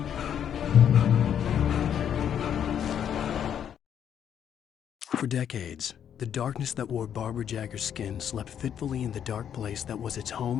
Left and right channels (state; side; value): quieter; right; 9.0 dB